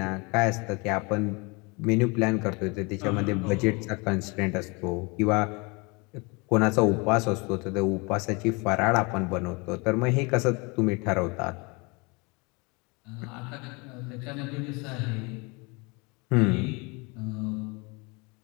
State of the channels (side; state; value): right; quieter; 28.6 dB